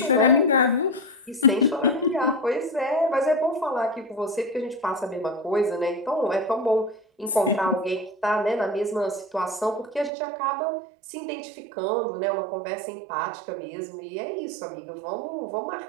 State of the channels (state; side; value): drops out; left; at 10.1 s